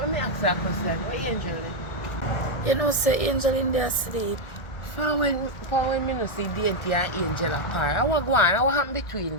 me ask you a question, what Angel eh? You know, say Angel in there sleep. From when me no see Dainty and Angel apart, I was going, what happened between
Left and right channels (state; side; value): late; right; 1.4 ms